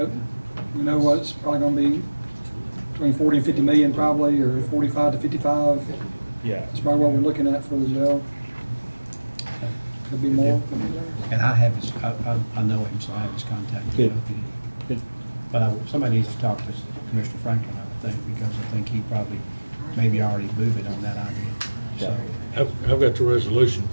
we know what's probably going to be between 40 and 50 million probably, or 45 to 55. Yeah. That's probably what we're looking at for the jail. Could be more. And I have his, I know him, so I have his contact. Good. But somebody needs to talk to Commissioner Franklin, I think, because I think he probably maybe already moved it on that idea. So, I've got the resolution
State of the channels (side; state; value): both; inverted; correlation -1.00